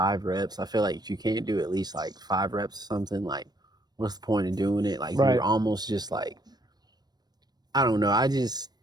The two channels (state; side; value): late; left; 0.19 ms